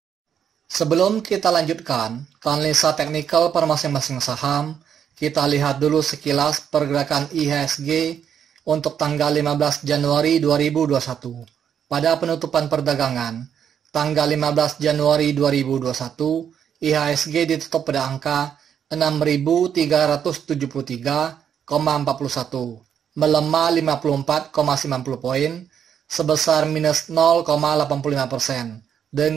Sebelum kita lanjutkan ke analisa teknikal per masing-masing saham, kita lihat dulu sekilas pergerakan IHSG untuk tanggal 15 Januari 2021. Pada penutupan perdagangan, tanggal 15 Januari 2021, IHSG ditutup pada angka 6.373,41, melemah 54,90 poin, sebesar minus 0,85%,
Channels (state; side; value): quieter; left; 8.4 dB